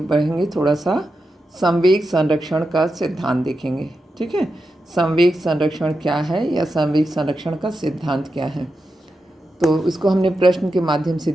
थोड़ा सा संवेग संरक्षण का सिद्धांत देखेंगे। ठीक है, संवेग संरक्षण क्या है या संवेग संरक्षण का सिद्धांत क्या है, तो इसको हमने प्रश्न के माध्यम से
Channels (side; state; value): both; normal; correlation 0.89